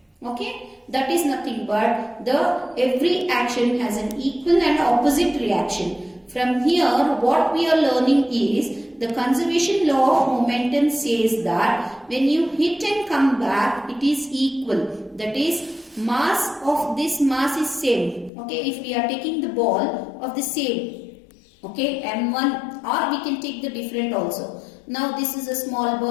Okay, that is nothing but every action has an equal and opposite reaction. From here, what we are learning is the conservation law of momentum says that when you hit and come back, it is equal. That is, mass of this mass is same. Okay, if we are taking the ball of the same, okay, M1, or we can take the different also. Now this is a small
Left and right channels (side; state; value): right; drops out; at 18.3 s